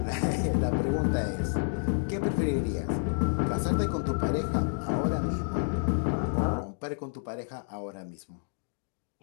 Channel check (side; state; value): right; silent; digital silence